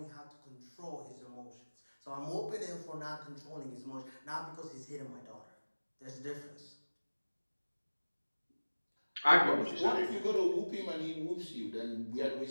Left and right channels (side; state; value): both; inverted; correlation -1.00